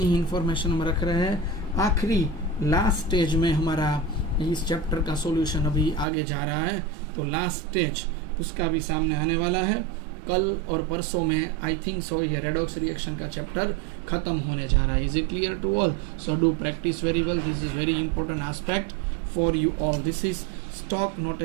ही इंफॉर्मेशन हम रख रहे हैं। आखिरी लास्ट स्टेज में हमारा इस चैप्टर का सॉल्यूशन अभी आगे जा रहा है, तो लास्ट स्टेज उसका भी सामने आने वाला है। कल और परसों में आई थिंक सो ये रेडॉक्स रिएक्शन का चैप्टर खत्म होने जा रहा है। Is it clear to all? So do practice very well, this is very important aspect for you all. This is stock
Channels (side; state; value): left; drops out; at 6.1 s